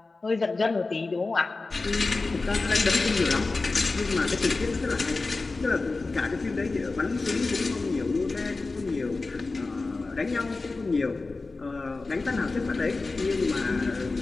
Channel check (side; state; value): right; quieter; 3.6 dB